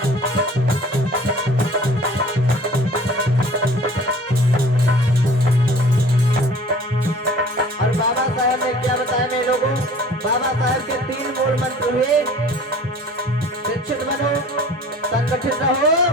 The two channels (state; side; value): normal; both; correlation 0.47